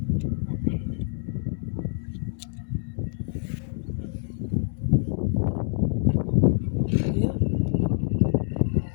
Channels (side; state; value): right; silent; 61 dB below the other